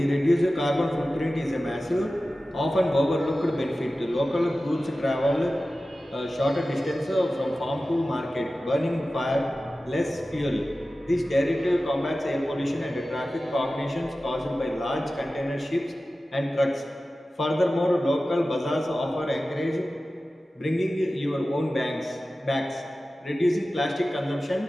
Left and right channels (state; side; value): normal; both; correlation 0.95